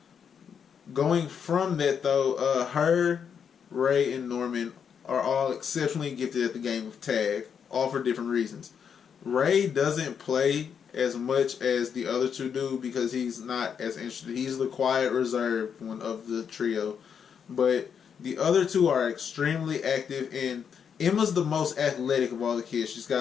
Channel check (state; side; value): quieter; right; 7.3 dB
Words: Going from that, though, her, Ray, and Norman are all exceptionally gifted at the game of tag, all for different reasons. Ray doesn't play as much as the other two do because he's not as interested. He's the quiet, reserved one of the trio. But the other two are extremely active, and Emma's the most athletic of all the kids. She's